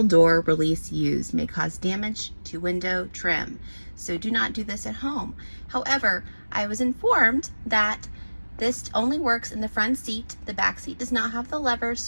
door release used may cause damage to window trim. So do not do this at home. However, I was informed that this only works in the front seat. The back seat does not have the levers,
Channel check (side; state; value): both; inverted; correlation -1.00